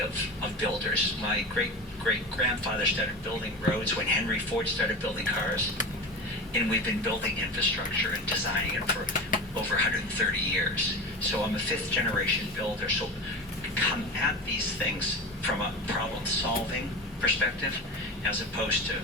of builders. My great-grandfather started building roads when Henry Ford started building cars. And we've been building infrastructure and designing it for over 130 years. So I'm a 5th-generation builder. So come at these things from a problem-solving perspective, as opposed to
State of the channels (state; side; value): normal; both; correlation 0.28